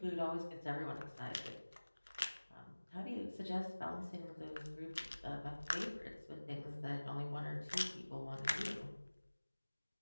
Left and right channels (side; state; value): both; inverted; correlation -1.00